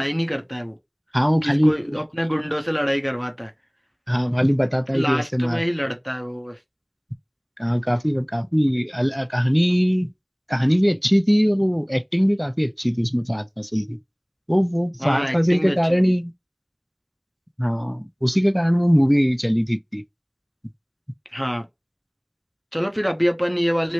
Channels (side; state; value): both; identical; correlation 1.00